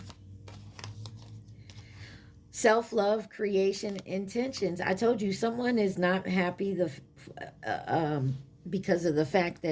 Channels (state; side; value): identical; both; correlation 1.00